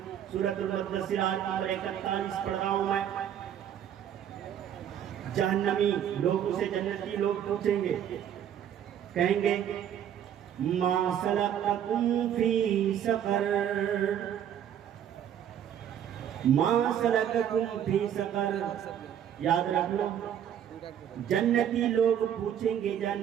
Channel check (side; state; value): left; quieter; 9.7 dB